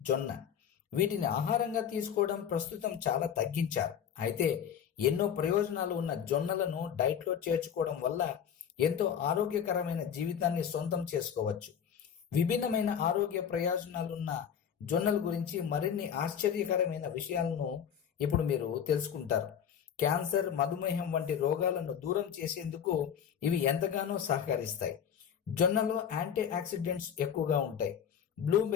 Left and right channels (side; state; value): right; quieter; 8.3 dB